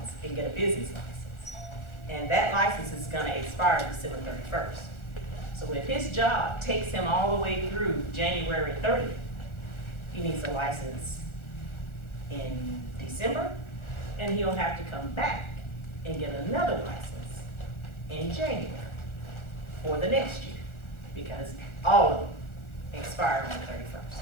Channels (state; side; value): late; right; 1.4 ms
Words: and get a business license. And that license is going to expire December 31st. So if his job takes him all the way through January 30th, he needs a license in December and he'll have to come back and get another license in January for the next year, because all of them expire on the 31st.